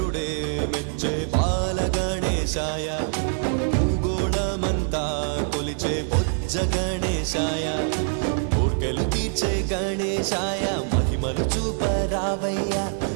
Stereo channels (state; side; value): silent; left; 62 dB below the other